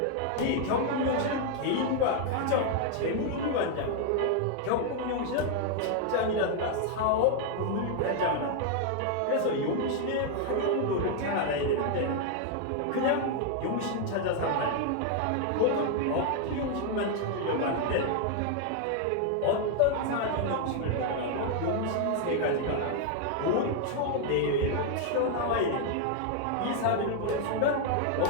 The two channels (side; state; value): both; different; correlation 0.00